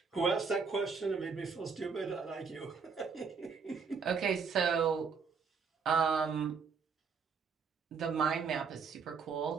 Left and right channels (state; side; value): quieter; left; 5.5 dB